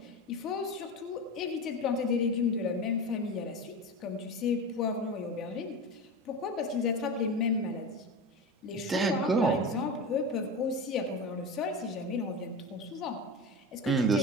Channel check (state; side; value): normal; both; correlation 0.26